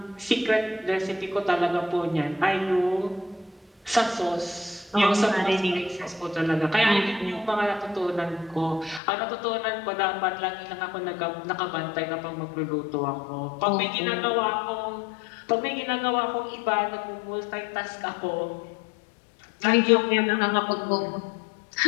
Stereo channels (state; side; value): drops out; right; at 9.0 s